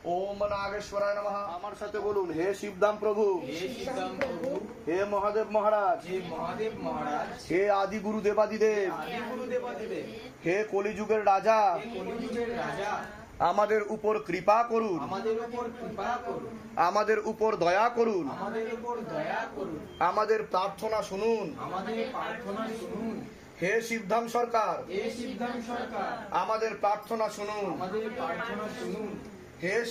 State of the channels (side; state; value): both; identical; correlation 1.00